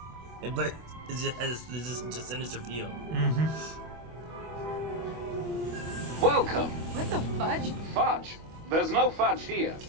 But it just has just sinister feel. Welcome. What the fudge? Fudge. There's no fudge here.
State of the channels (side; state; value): left; late; 25 ms